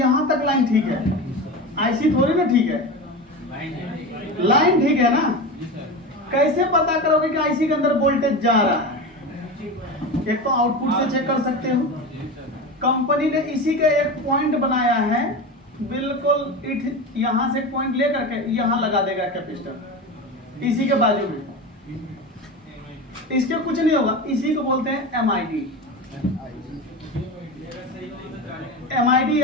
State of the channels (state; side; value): normal; both; correlation 0.25